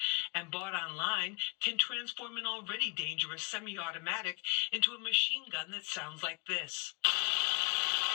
and bought online can transform an already dangerous semi-automatic into a machine gun that sounds like this.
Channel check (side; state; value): right; quieter; 36.6 dB